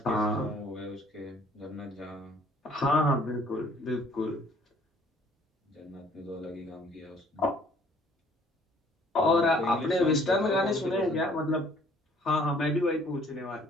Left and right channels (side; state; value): both; normal; correlation 0.58